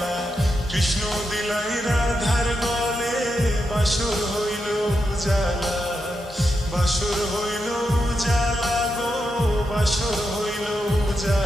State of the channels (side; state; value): both; normal; correlation 0.85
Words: কৃষ্ণ দিলাই রাধার গলে, বাসর হইল উজালা, বাসর হইল উজালা গো, বাসর হইল